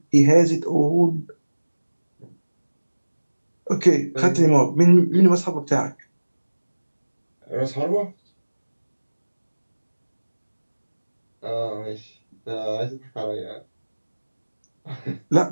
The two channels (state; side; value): inverted; both; correlation -1.00